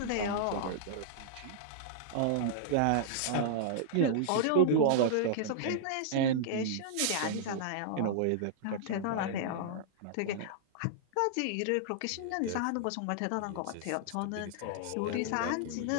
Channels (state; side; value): different; both; correlation -0.01